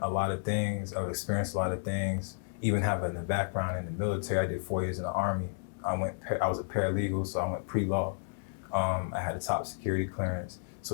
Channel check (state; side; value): silent; right; digital silence